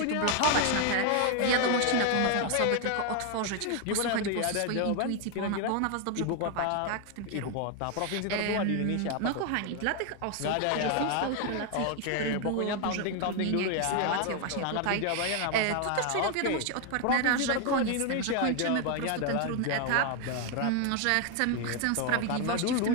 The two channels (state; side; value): different; both; correlation 0.01